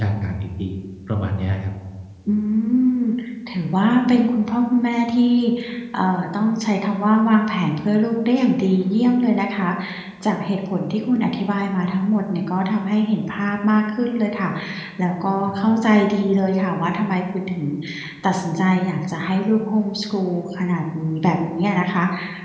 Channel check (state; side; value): identical; both; correlation 1.00